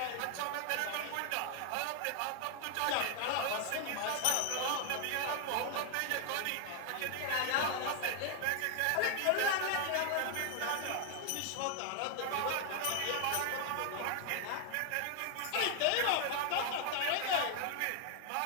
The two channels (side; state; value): both; different; correlation 0.00